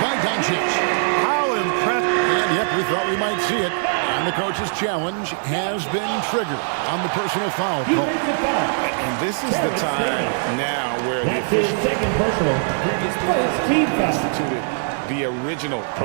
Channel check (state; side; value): silent; left; 65 dB below the other